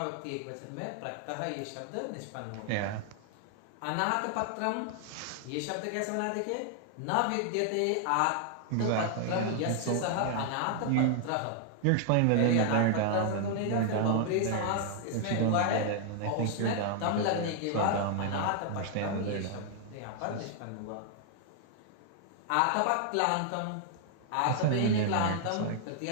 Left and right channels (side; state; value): both; different; correlation 0.00